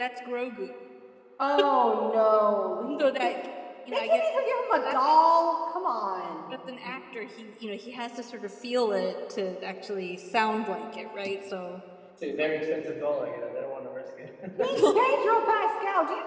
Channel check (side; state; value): both; identical; correlation 1.00